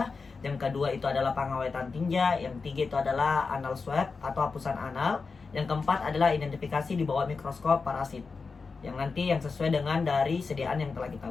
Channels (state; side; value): quieter; right; 4.6 dB